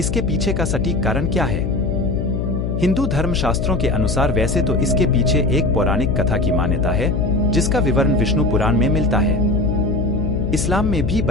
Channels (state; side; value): noise; left; hum, 1 dB below the sound